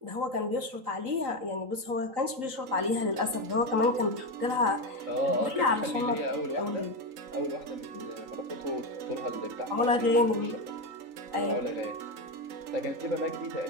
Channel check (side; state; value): left; late; 3.9 ms